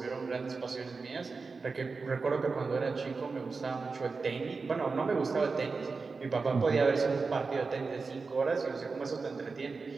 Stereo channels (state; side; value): quieter; left; 4.4 dB